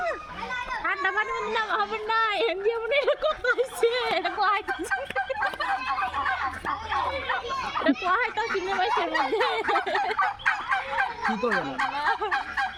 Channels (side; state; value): both; identical; correlation 1.00